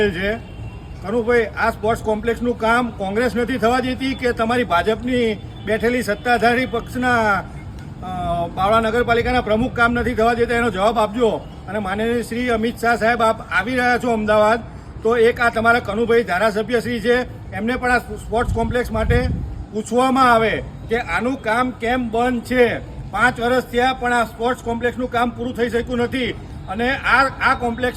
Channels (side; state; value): both; identical; correlation 1.00